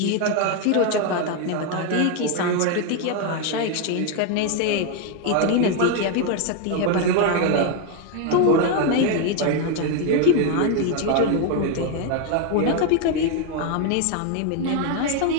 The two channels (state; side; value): different; both; correlation 0.01